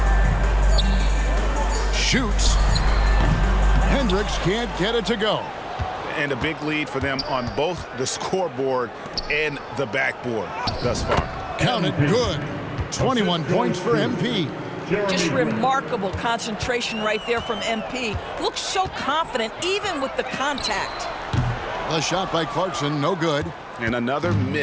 Shoots. Hendricks can't get it to go. And a big lead for them on both the scoreboard and the backboard thus far. Counted good. 21 points for MP. Just remarkable concentration right there from MP. Looks so confident even with the contact. The shot by Clarkson, no good. And another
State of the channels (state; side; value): identical; both; correlation 1.00